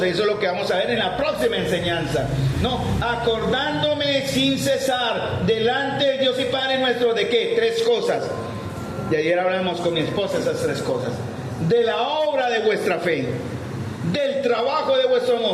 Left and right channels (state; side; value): identical; both; correlation 1.00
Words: Y eso es lo que vamos a ver en la próxima enseñanza. No, acordándome sin cesar delante de Dios y Padre nuestro, ¿de qué? Tres cosas. Y ayer hablamos con mi esposa esas tres cosas. De la obra de vuestra fe, del trabajo de vuestro